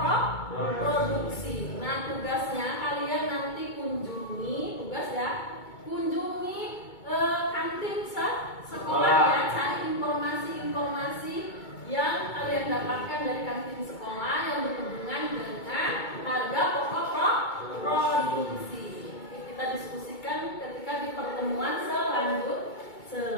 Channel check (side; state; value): right; late; 2.2 ms